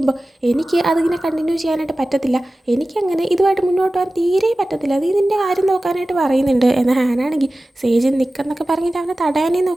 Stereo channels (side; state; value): both; normal; correlation 0.96